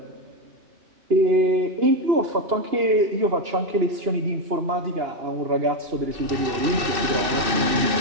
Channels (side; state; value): left; late; 2.6 ms